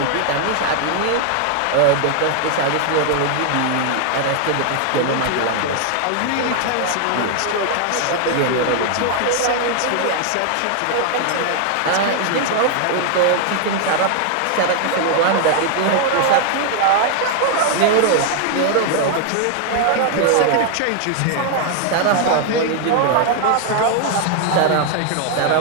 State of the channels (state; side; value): different; both; correlation 0.00